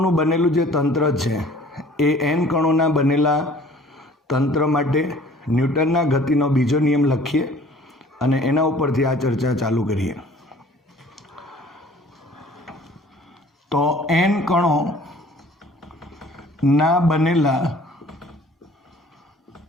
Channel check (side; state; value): both; normal; correlation 0.51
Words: બનેલું જે તંત્ર છે એ એન કણોના બનેલા તંત્ર માટે ન્યૂટનના ગતિનો બીજો નિયમ લખીએ અને એના ઉપરથી આ ચર્ચા ચાલુ કરીએ. તો એન કણો ના બનેલા